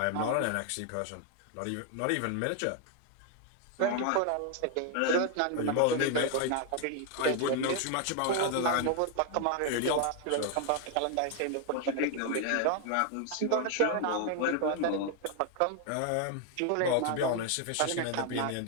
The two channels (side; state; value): both; different; correlation 0.00